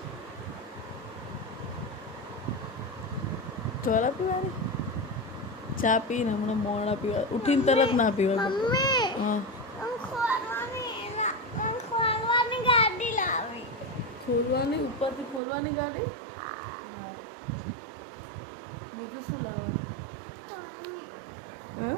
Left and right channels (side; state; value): left; drops out; at 15.4 s